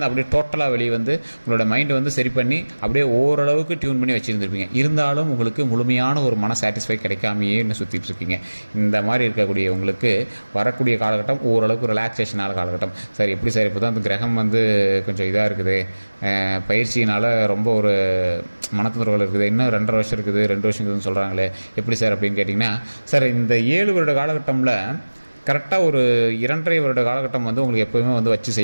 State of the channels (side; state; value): both; inverted; correlation -1.00